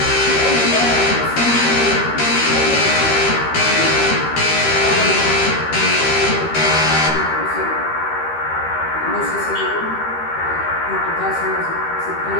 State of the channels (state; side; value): late; right; 13 ms